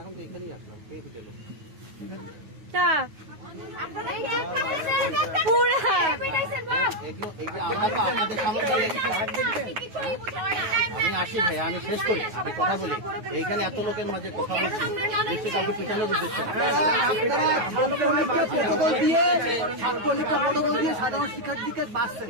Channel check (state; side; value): late; left; 9.4 ms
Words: তো এখানেই আসলাম কে তো গেল তা আপনারা এই যে পুরা পিটাইছেন বাহ, এগুলো এই যে আমরা তো আপনাদের সামনে কিছুই বুঝতে পারি না। আমি আসি ভাই আমি শেষ করি আমি কথা বলি এইখানে এত লোকের মাঝে কথা বলছি দেখছি কাউকে পিছানোর উদ্দেশ্য ছাত্রলীগটা প্রটোকল দিয়ে সাধারণ শিক্ষার্থীকে বাঁচছেন,